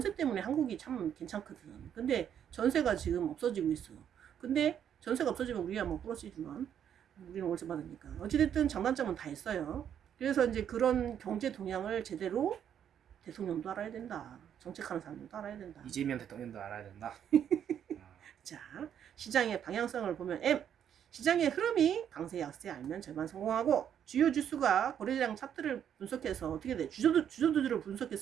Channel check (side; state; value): left; quieter; 9.1 dB